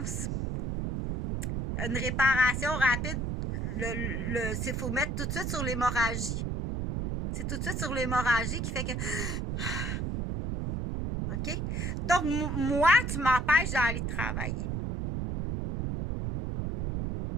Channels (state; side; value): noise; right; rumble, 2 dB below the sound